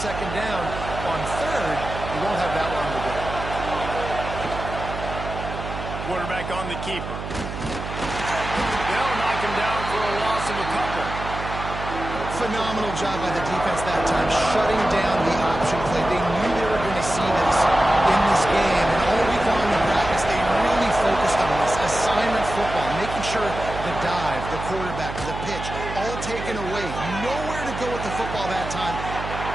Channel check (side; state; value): right; noise; hum, 8 dB below the sound